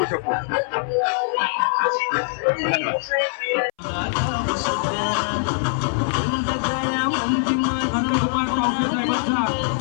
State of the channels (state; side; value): silent; right; 62 dB below the other